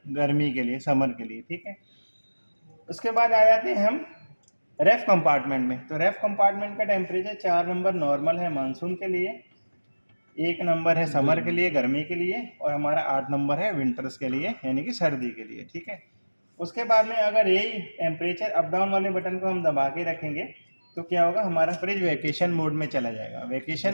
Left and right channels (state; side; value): inverted; both; correlation -1.00